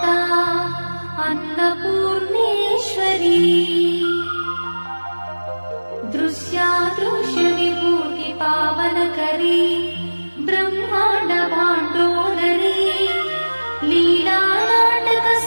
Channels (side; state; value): both; inverted; correlation -1.00